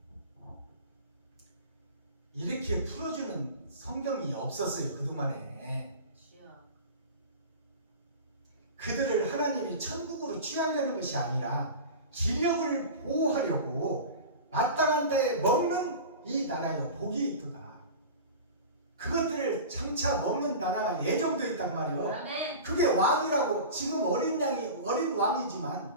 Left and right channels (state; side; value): inverted; both; correlation -0.33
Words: 이렇게 풀어주는 성경이 없었어요 그동안에. 주여. 그들을 하나님이 천국으로 취하려는 것이 아니라 기력을 보호하려고 마땅한 때에 먹는 이 나라여 복이 있도다. 그것들을 장차 먹는 나라가 예정되어 있단 말이에요. 아멘. 그게 왕이라고. 지금 어린